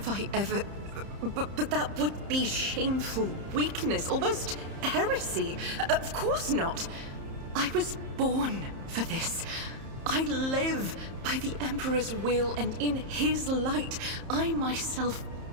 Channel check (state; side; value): late; left; 30 ms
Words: I ever... But that would be shameful weakness, almost heresy. Of course not. I was born for this. I live by the Emperor's will, and in his light, I myself